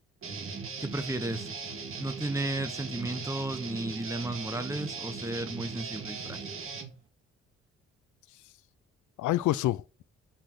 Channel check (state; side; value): normal; both; correlation 0.45